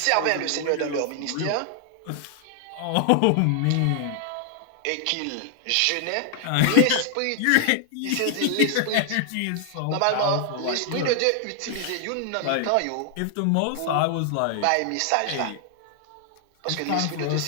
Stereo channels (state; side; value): different; both; correlation 0.00